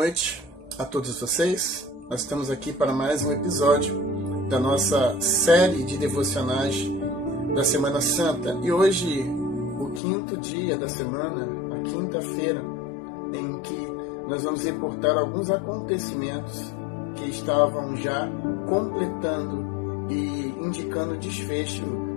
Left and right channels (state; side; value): drops out; right; at 10.0 s